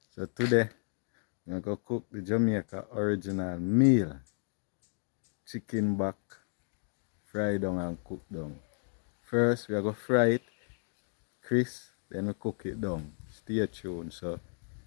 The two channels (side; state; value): right; silent; 56 dB below the other